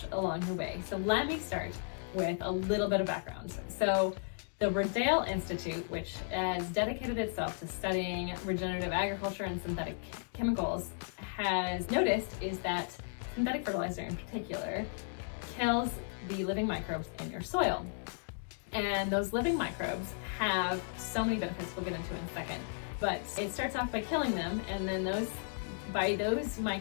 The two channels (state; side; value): silent; right; digital silence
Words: along the way. So let me start with a little bit of background. So the Rodale Institute, which has dedicated itself to studying regenerative agriculture and synthetic chemicals, has noticed is that synthetic fertilizer in particular kills the living microbes in your soil. And those living microbes have so many benefits we'll get into in a second. But it starts off by killing them, and then by those